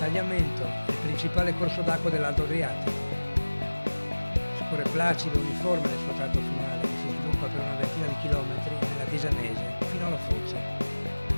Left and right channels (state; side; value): inverted; both; correlation -1.00